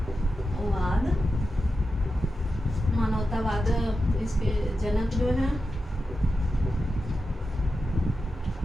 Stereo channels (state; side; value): normal; both; correlation 0.90